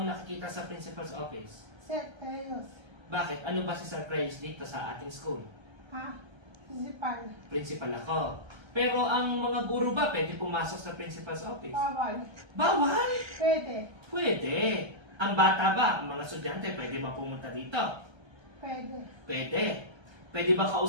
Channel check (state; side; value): late; left; 1.3 ms